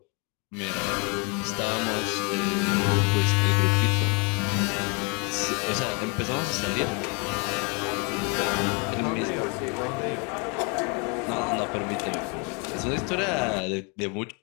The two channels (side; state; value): right; quieter; 33.6 dB